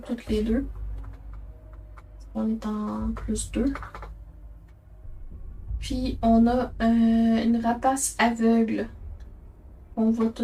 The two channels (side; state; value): both; identical; correlation 1.00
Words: les deux. On est en plus 2. Puis, on a une rapace aveugle. On voit